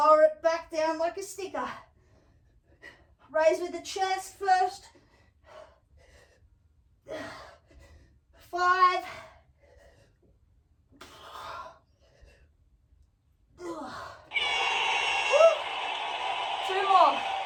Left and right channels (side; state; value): both; identical; correlation 1.00